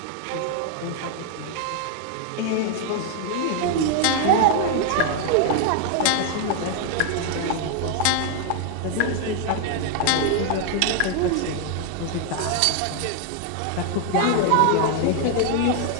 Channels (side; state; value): both; different; correlation 0.00